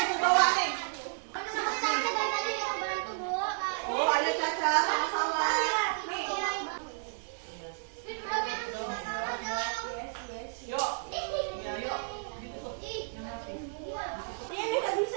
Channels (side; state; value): left; silent; digital silence